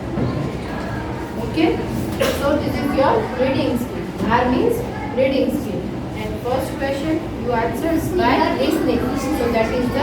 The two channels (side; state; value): both; identical; correlation 1.00